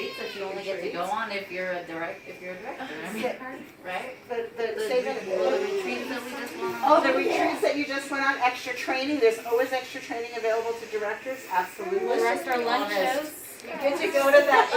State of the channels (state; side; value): identical; both; correlation 1.00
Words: that you only get to go on if you're a director. I mean, right? The retreats that we just went on. Oh, the retreats that you just went on, extra training. There's always extra training available to directors. Absolutely. The rest are lunch shows. You get to go to that